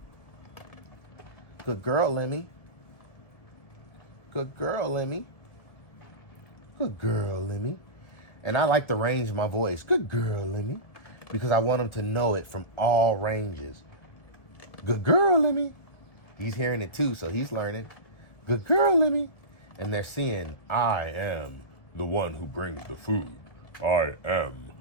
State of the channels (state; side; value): late; right; 1.7 ms